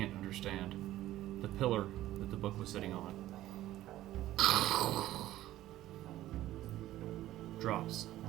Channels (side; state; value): left; quieter; 14.5 dB